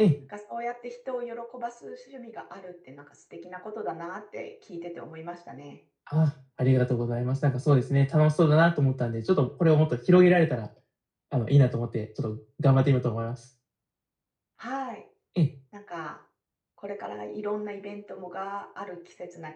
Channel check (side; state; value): both; identical; correlation 1.00